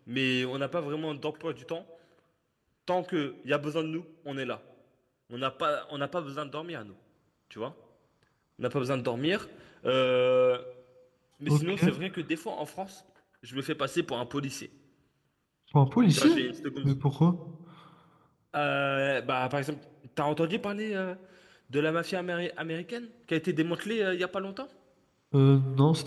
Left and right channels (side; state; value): both; identical; correlation 1.00